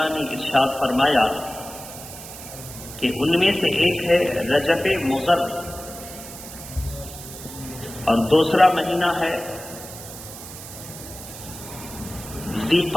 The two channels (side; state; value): right; noise; hiss, 13 dB below the sound